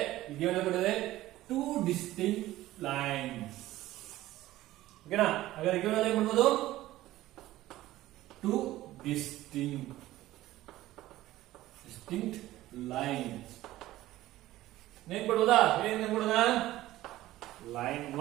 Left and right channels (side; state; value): left; quieter; 15.8 dB